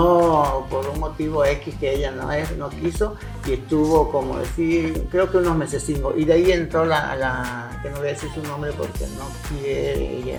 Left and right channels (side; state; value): both; identical; correlation 1.00